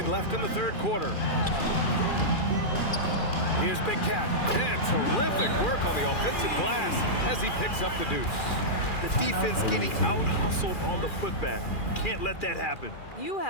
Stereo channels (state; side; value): late; right; 2.4 ms